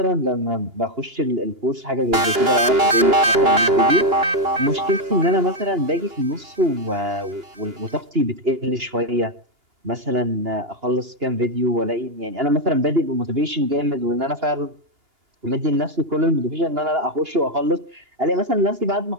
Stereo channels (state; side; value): late; left; 2.9 ms